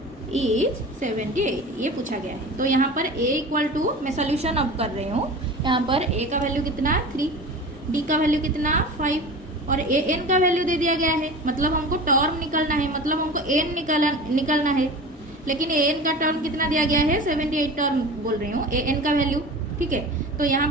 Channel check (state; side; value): normal; both; correlation 0.34